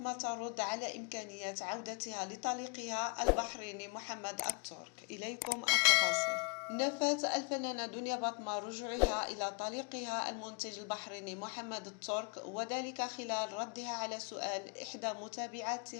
ترد على إمكانية عودتها لطليقها البحريني محمد الترك. إليكم التفاصيل. نفت الفنانة دنيا بطمة رجوعها إلى طليقها المنتج البحريني محمد الترك، وذلك خلال ردها على سؤال إحدى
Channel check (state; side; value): quieter; right; 33.7 dB